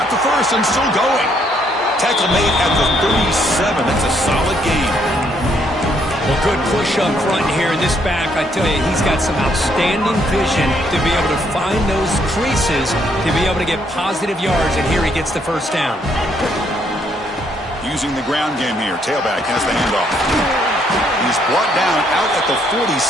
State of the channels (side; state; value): both; normal; correlation 0.70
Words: the 1st and still going. Tackle made at the 37. That's a solid gain. Well, good push up front here in this back. I tell you, he's got some outstanding vision to be able to find those creases, to be able to get positive yards, and here he gets the 1st down. Using the ground game here. Tailback has the handoff. He's brought down out at the